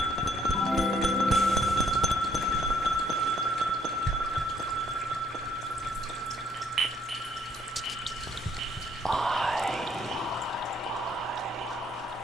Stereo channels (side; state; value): both; normal; correlation 0.66